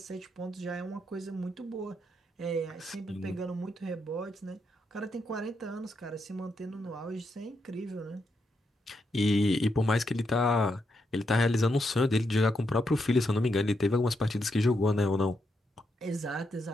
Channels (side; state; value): both; normal; correlation 0.81